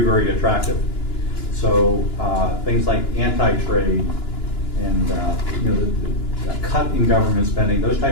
very attractive. So things like anti-trade and you know, the cut in government spending, those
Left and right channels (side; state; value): right; late; 2.9 ms